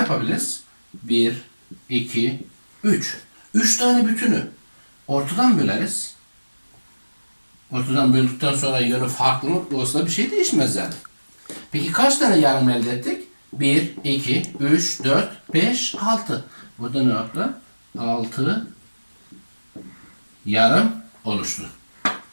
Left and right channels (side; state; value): both; inverted; correlation -1.00